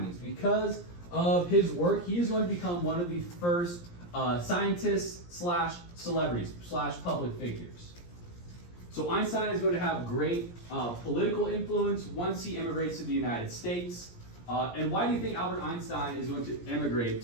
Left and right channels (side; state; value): right; late; 17 ms